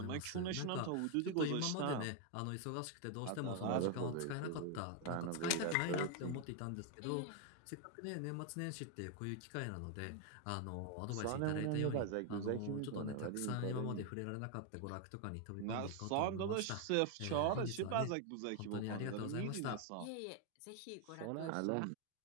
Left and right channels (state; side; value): different; both; correlation 0.00